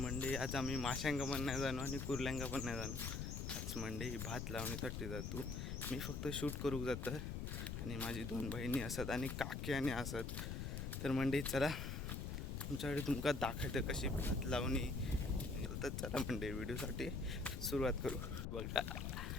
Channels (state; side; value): noise; left; rumble, 3 dB below the sound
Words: आज आम्ही माशांका पण नाही जाणू आणि कुर्ल्यांका पण नाही जाणू. आज मंडळी भात लावण्यासाठी जातो. मी फक्त शूट करू जातं आणि माझी 2 बहिणी असत आणि काकी आणि असत. तर मंडळी चला तुमच्याकडे तुमका दाखवतं कशी भात लावणी. तर चला मंडळी व्हिडिओसाठी सुरुवात करू. बघा